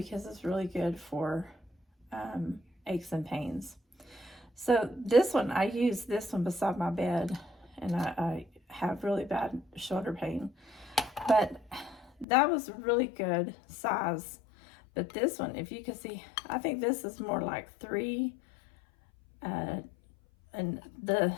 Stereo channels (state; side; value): drops out; right; at 12.2 s